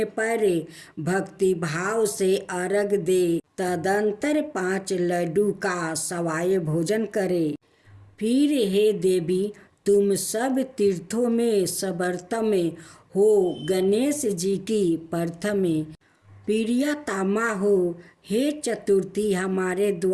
पर भक्ति भाव से अर्घ दे। तदंतर 5 लड्डू का सवाय भोजन करे। फिर हे देवी, तुम सब तीर्थों में सर्वोत्तम हो। गणेश जी की प्रथम प्रियतमा हो। हे चतुर्थी, हमारे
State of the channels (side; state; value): both; identical; correlation 1.00